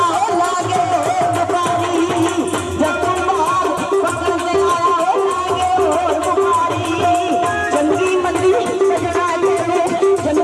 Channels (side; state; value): both; identical; correlation 1.00